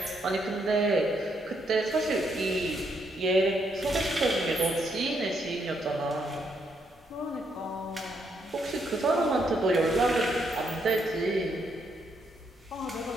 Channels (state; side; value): normal; both; correlation 0.76